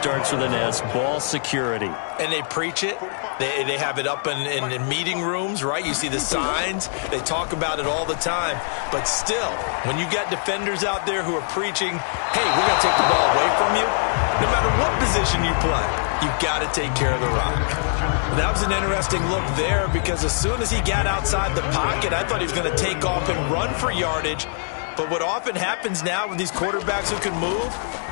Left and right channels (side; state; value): right; silent; 64 dB below the other